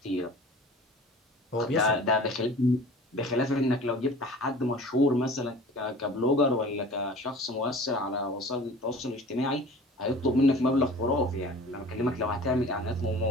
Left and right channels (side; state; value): both; normal; correlation 0.42